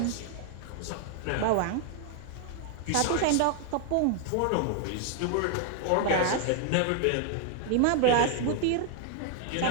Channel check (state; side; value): different; both; correlation 0.00